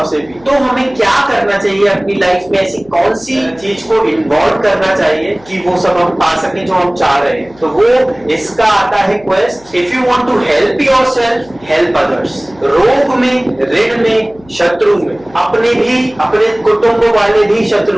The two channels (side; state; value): left; noise; hum, 26 dB below the sound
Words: से भी, तो हमें क्या करना चाहिए अपनी लाइफ में? ऐसी कौन सी चीज को इन्वॉल्व करना चाहिए कि वो सब हम पा सके जो हम चाह रहे हैं? तो वो इसका आता है quest. If you want to help yourself, help others. रोग में, ऋण में, शत्रु में, अपने भी, अपने कुटुंब वाले भी